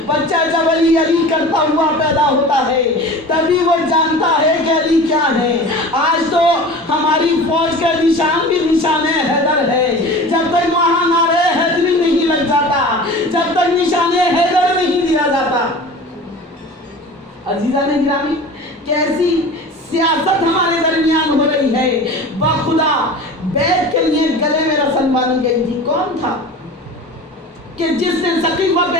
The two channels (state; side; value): normal; both; correlation 0.37